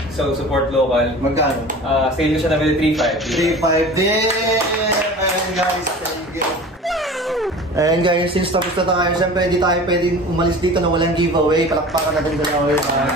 So, support local. Magkano? Sale ko siya na 3.5. 3.5 din! Ayan guys, thank you. Ayan guys, since tapos na tayo, siyempre hindi tayo pwedeng umalis dito na walang giveaway. Palakpakan natin gano'n.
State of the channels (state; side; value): normal; both; correlation 0.39